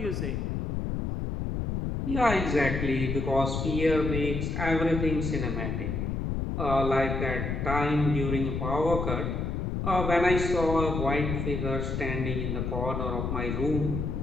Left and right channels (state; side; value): noise; left; rumble, 2 dB below the sound